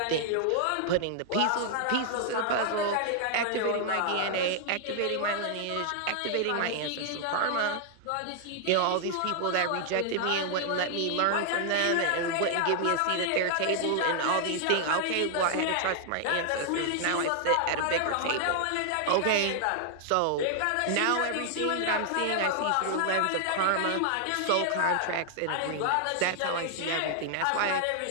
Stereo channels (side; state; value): both; different; correlation 0.00